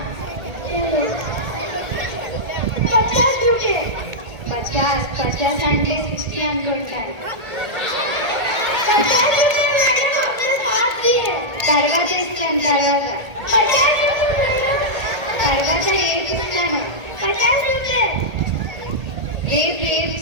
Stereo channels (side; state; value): left; late; 1.8 ms